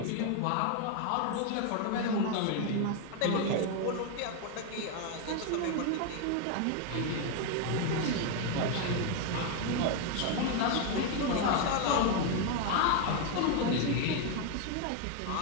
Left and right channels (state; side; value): different; both; correlation 0.01